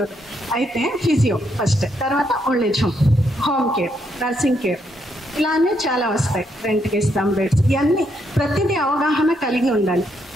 అవుతాను. అయితే ఫిజియో ఫస్ట్, తర్వాత old age home, home care, nursing care, ఇలానే చాలా వస్తాయి. రెంట్కి ఇస్తాం బెడ్స్, ఇవన్నీ ప్రతిదీ అవగాహన కలిగి ఉండాలి.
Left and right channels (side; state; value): both; normal; correlation 0.76